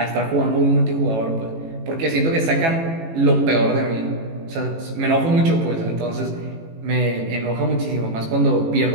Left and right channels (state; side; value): late; left; 18 ms